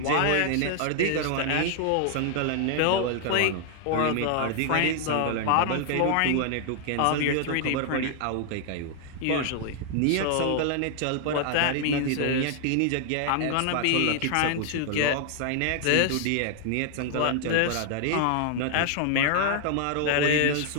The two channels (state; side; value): different; both; correlation 0.00